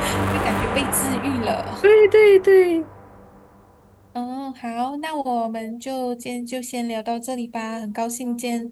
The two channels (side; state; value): both; identical; correlation 1.00